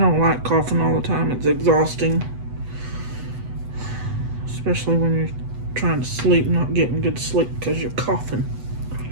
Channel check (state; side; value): late; left; 8.0 ms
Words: like coughing all the time. It's exhausting. Especially when you're trying to sleep, not getting good sleep because you're coughing.